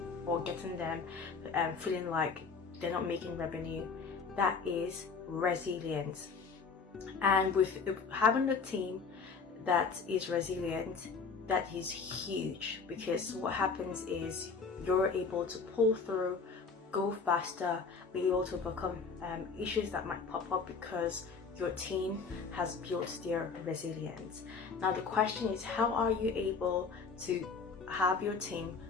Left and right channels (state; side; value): quieter; right; 5.1 dB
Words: or getting them feeling like they're not making revenue. That is resilience. And with having a team that is resilient, that is huge, because what happens is you're able to pull through, go faster, be able to overcome issues that might pop up because your team has built their resilience. Now the question is, how are you able to have your team